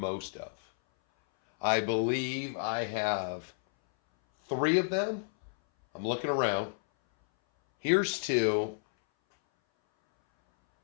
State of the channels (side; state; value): right; silent; 57 dB below the other